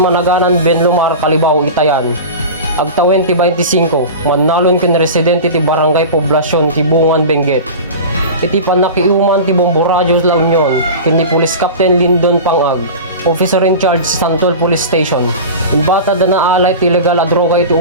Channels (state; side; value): inverted; both; correlation -0.31